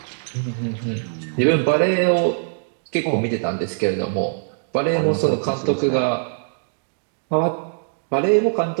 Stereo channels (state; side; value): silent; left; digital silence